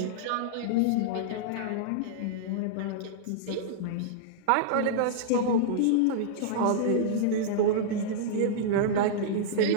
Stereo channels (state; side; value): different; both; correlation -0.02